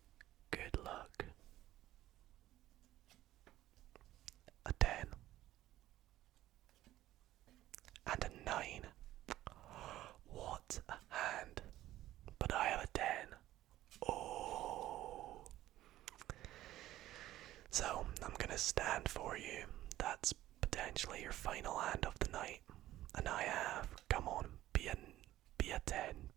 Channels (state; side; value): quieter; left; 14.5 dB